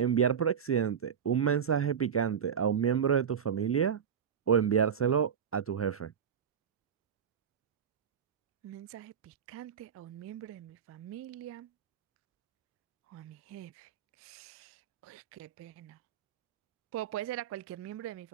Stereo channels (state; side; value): quieter; left; 7.8 dB